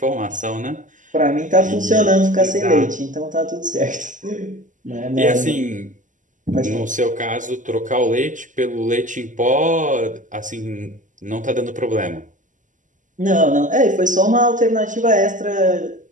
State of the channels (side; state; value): left; late; 0.37 ms